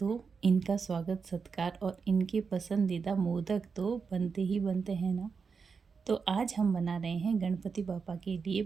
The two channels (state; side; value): quieter; left; 5.4 dB